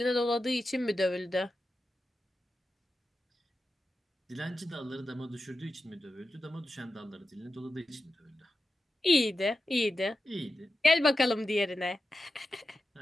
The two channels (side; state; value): both; normal; correlation 0.91